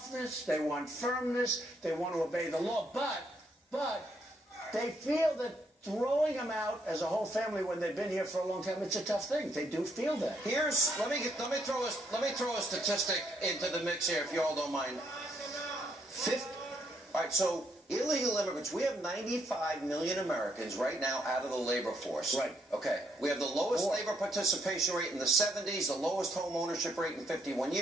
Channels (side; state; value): both; normal; correlation 0.73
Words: they want firmness, they want to obey the law, but they feel that throwing them out as a whole family when they've been here for a long time, it's a tough thing. They do feel that. Let me throw a statistic into the mix here, if you all don't mind. All right, so illegal immigrants, we have 95 million Americans right now out of the labor force. Right. Okay. We have the lowest labor participation rate in the 70s, the lowest home ownership rate in 51